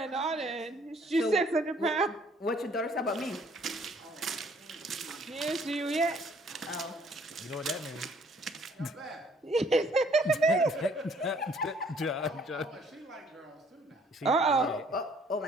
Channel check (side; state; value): both; normal; correlation 0.61